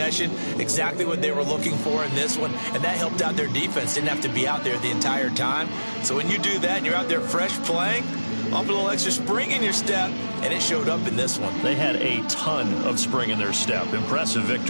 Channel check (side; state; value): both; inverted; correlation -1.00